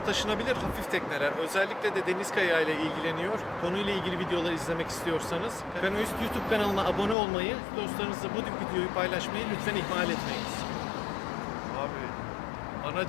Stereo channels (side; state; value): right; drops out; at 7.2 s